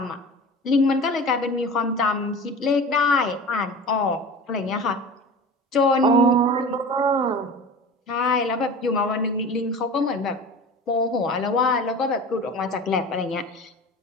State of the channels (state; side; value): normal; both; correlation 0.35